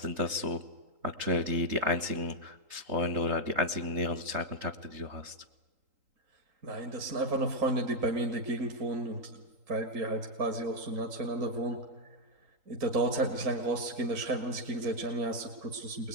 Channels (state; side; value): late; left; 3.8 ms